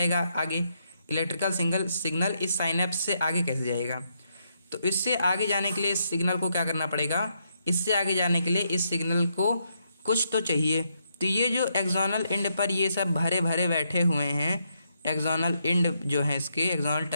आगे, इलेक्ट्रिकल सिग्नल इस साइनैप्स से आगे कैसे जाएगा। तो इससे आगे जाने के लिए इस सिग्नल को क्या करना पड़ेगा, इससे आगे जाने के लिए इस सिग्नल को कुछ तो चाहिए। तो ये जो एक्सोनल एंड पर ये सब भरे भरे बैठे हुए हैं, एक्सोनल एंड जो है इसके एक्सोनल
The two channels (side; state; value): both; inverted; correlation -0.78